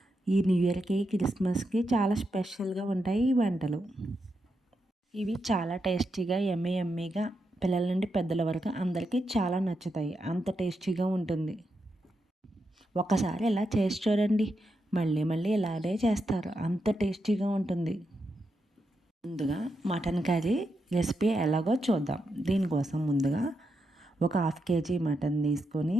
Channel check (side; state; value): both; normal; correlation 0.85